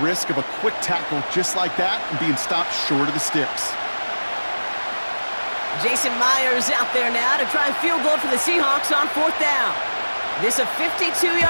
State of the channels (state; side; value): inverted; both; correlation -1.00